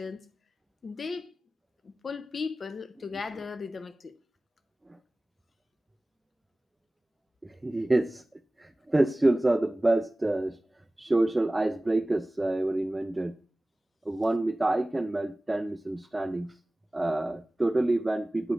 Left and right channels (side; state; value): both; normal; correlation 0.98